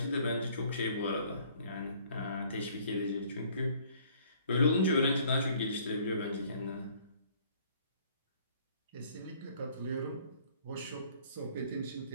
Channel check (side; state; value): both; inverted; correlation -0.58